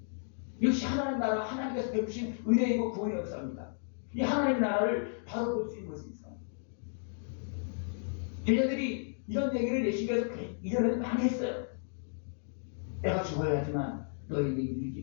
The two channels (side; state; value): right; silent; digital silence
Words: 이것이 하나님 나라, 하나님께서 베푸신 은혜이고 구원의 역사입니다. 이 하나님 나라를 바로 볼 수 있는 것이 있어요. 제자들이 이런 얘기를 예수님께서 이전에는 많이 했어요. 내가 죽어야 하지만 너희들의